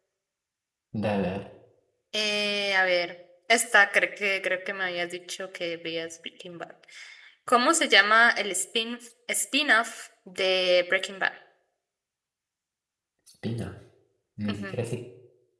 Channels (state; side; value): identical; both; correlation 1.00